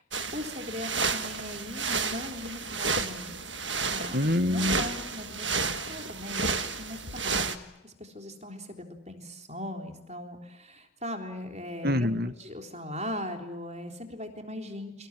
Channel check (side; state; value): both; normal; correlation 0.25